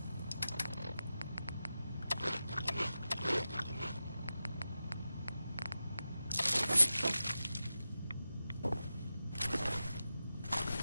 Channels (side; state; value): both; inverted; correlation -0.92